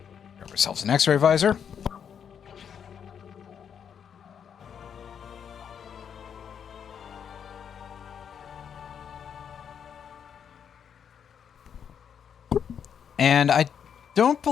Grab ourselves an X-ray visor. And I don't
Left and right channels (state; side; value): quieter; right; 7.8 dB